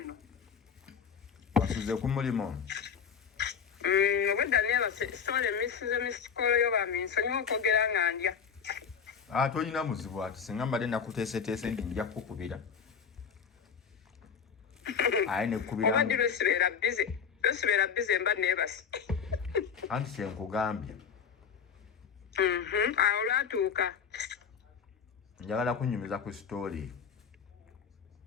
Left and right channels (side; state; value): right; quieter; 6.9 dB